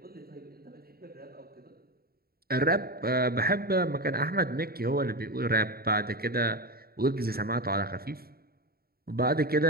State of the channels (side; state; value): left; late; 0.44 ms